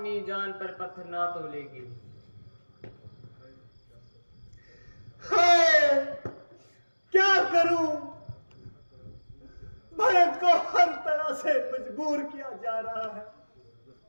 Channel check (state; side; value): inverted; both; correlation -1.00